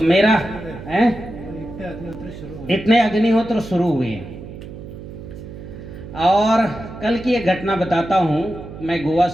मेरा है इतने अग्निहोत्र शुरू हुए। और कल की एक घटना बताता हूँ। मैं गोवा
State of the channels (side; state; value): right; noise; hum, 13 dB below the sound